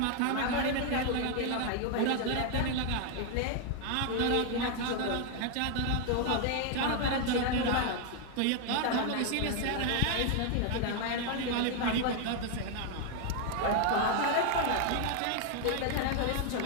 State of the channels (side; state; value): both; different; correlation 0.01